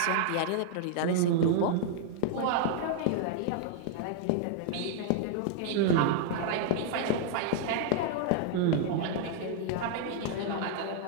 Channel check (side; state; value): both; different; correlation -0.01